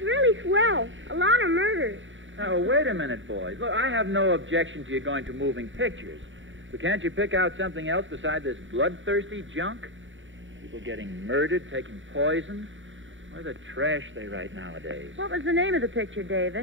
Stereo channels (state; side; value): late; left; 0.56 ms